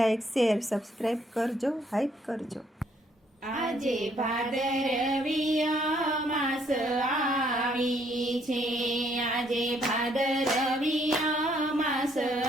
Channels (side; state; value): both; normal; correlation 0.68